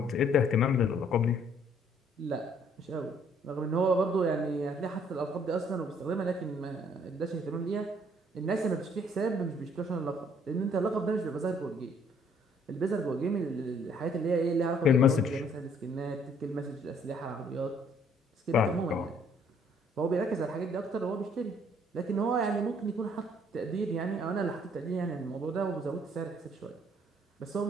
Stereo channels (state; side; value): normal; both; correlation 0.63